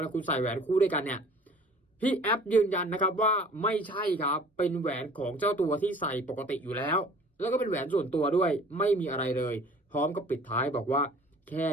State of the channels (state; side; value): normal; both; correlation 0.49